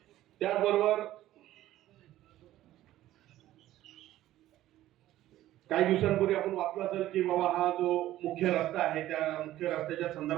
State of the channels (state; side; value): quieter; left; 14.3 dB